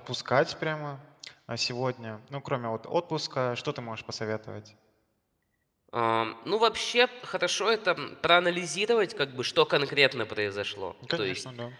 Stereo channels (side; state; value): both; identical; correlation 1.00